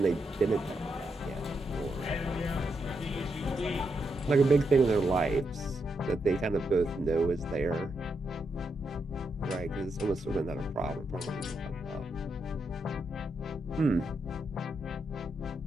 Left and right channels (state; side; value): normal; both; correlation 0.82